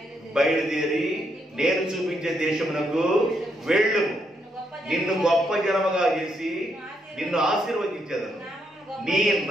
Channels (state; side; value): normal; both; correlation 0.78